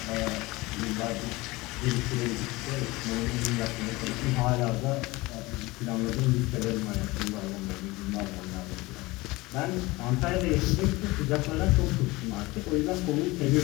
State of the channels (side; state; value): right; quieter; 21.5 dB